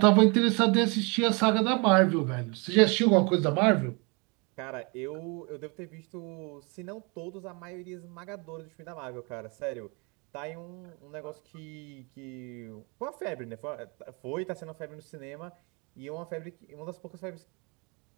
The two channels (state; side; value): quieter; left; 30.9 dB